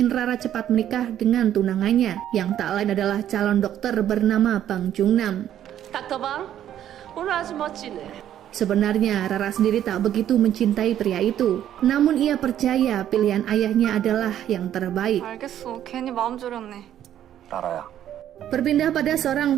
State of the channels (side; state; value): left; quieter; 11.0 dB